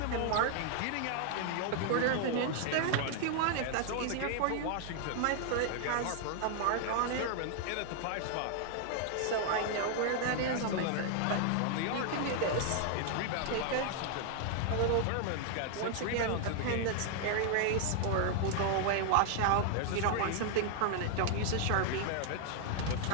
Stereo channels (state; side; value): different; both; correlation 0.00